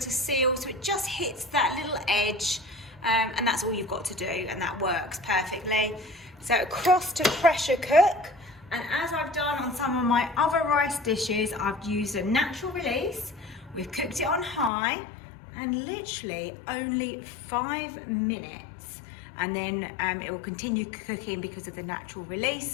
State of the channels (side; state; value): right; drops out; at 14.7 s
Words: seal so it just hits that little edge. And that's all you've got to do, and that works perfectly. So across to pressure cook, and as I've done on some of my other rice dishes, I've used a natural release. We've cooked it on high and literally only 5 minutes, and then it will continue cooking because of the natural release,